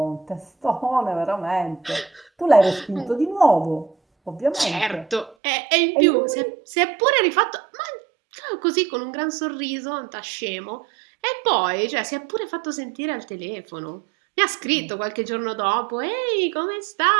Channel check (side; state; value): left; drops out; at 5.4 s